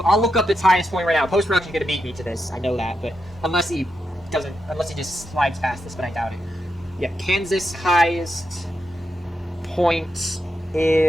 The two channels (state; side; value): normal; both; correlation 0.85